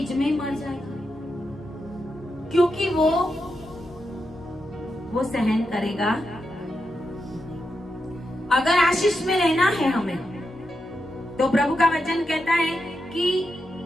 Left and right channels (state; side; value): normal; both; correlation 0.86